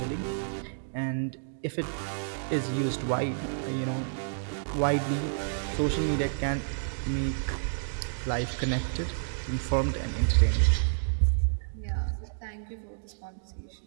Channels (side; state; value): left; silent; digital silence